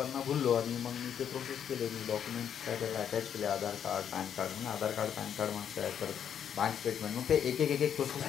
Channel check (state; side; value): quieter; right; 8.7 dB